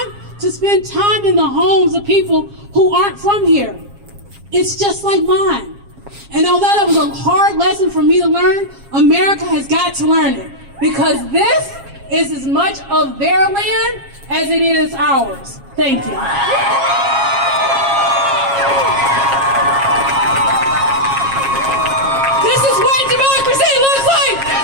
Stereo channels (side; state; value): left; late; 7.3 ms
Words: to spend time in the homes of people who aren't from here. It's just like mine. And although that was a hard lesson for me to learn, America has got to learn it, because this is as much of their land as it is ours. Thank you. This is what democracy looks like.